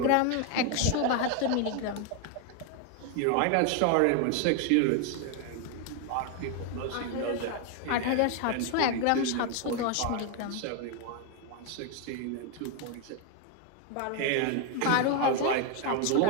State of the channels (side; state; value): both; different; correlation 0.01